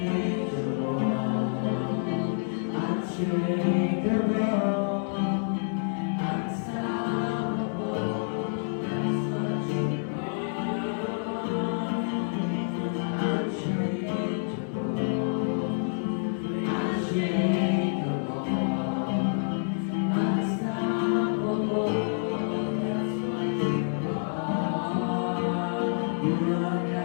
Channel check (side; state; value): right; silent; digital silence